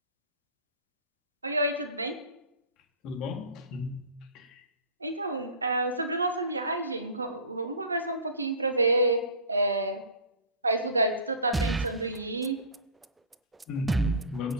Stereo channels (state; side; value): inverted; both; correlation -0.35